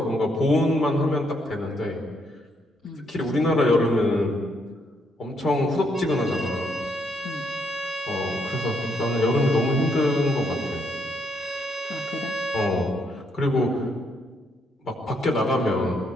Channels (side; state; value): both; normal; correlation 0.74